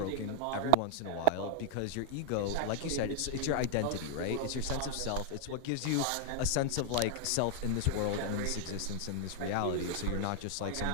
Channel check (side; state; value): both; different; correlation 0.00